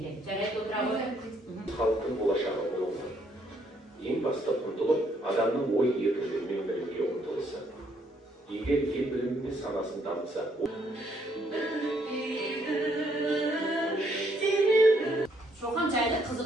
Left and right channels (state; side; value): normal; both; correlation 0.70